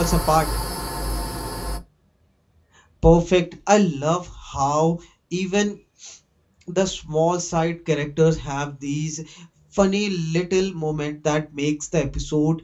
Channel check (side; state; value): both; identical; correlation 1.00